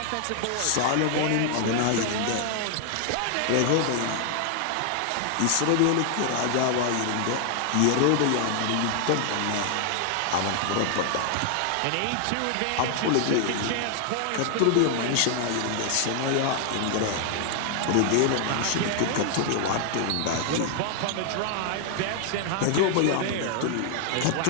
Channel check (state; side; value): different; both; correlation 0.00